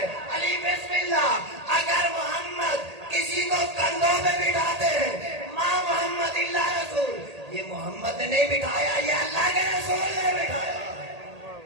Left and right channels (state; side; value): late; left; 1.8 ms